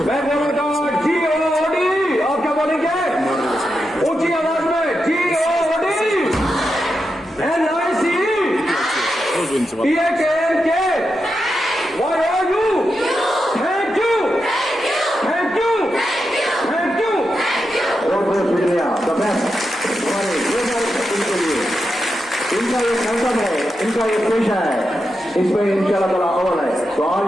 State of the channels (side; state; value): both; normal; correlation 0.87